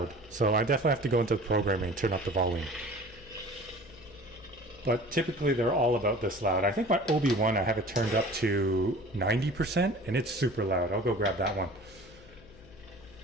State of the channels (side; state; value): left; noise; hum, 22 dB below the sound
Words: so I definitely have to go into the programming and turn up the volume. But typically they're all about this loud. I think my Obi-Wan, I have it turned up to 90% and it's super loud. I'll go grab that one.